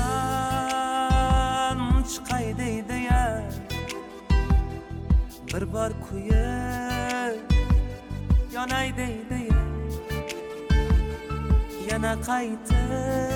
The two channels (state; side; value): identical; both; correlation 1.00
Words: chiqay deydi-ya, bir bor kuyib yonay deydi-ya, yana